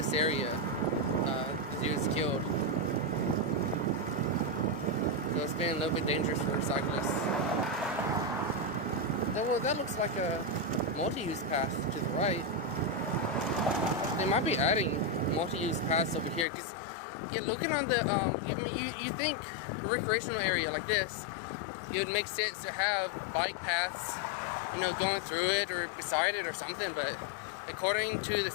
area he was killed. So it's been a little bit dangerous for cyclists. Well, that looks like a multi-use path to the right. They might be adding multi-use paths over here because you're looking on the you think a recreational area like this, it would make sense to have bike paths, going through it or beside it or something. But according to the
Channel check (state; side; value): drops out; right; at 16.4 s